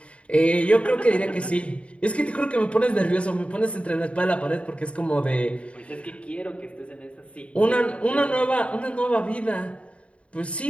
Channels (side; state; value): right; late; 0.061 ms